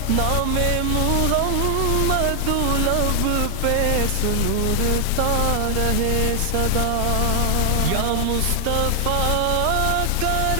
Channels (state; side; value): different; both; correlation 0.00